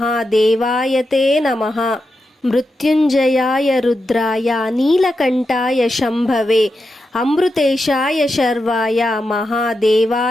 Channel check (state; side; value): normal; both; correlation 0.88